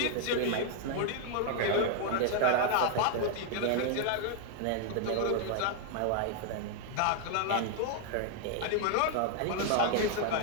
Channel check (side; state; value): both; different; correlation 0.00